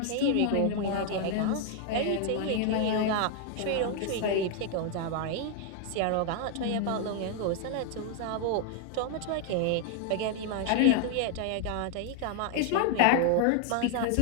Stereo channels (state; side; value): different; both; correlation 0.00